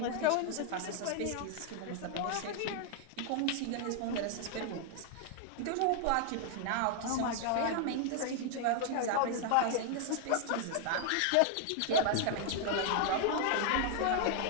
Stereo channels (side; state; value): both; different; correlation 0.00